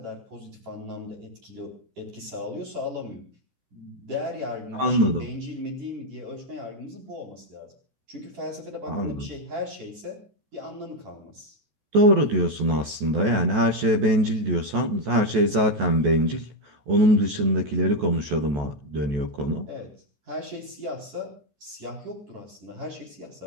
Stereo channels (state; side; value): late; left; 14 ms